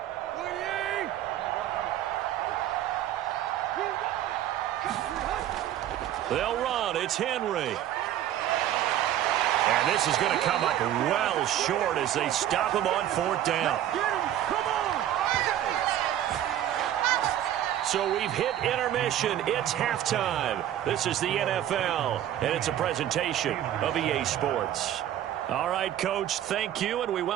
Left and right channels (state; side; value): quieter; left; 11.8 dB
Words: They'll run. It's Henry. And this is going to come up well short as they stop him on fourth down. So we've hit intermission. It's halftime. This is the NFL, and it's a presentation of EA Sports. All right, Coach, thank you, and we